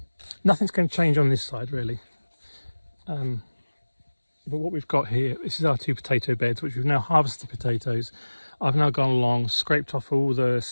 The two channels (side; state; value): both; inverted; correlation -1.00